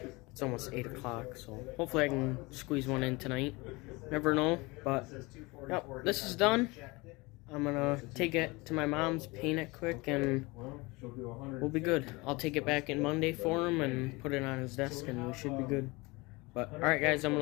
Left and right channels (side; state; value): right; quieter; 24.3 dB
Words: It's almost 8 o'clock, so hopefully I can squeeze one in tonight. Never know, but yep, this is done. I'm gonna take it to my mom's, paint it quick, and we'll be good. I'll take it back in Monday for him and put it on his desk, and we should be good. But, alright guys, I'm